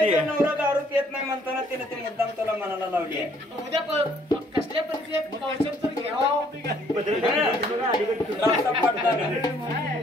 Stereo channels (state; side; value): normal; both; correlation 0.64